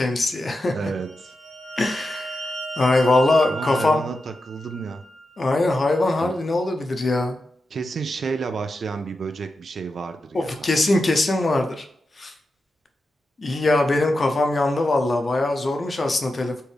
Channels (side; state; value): both; normal; correlation 0.90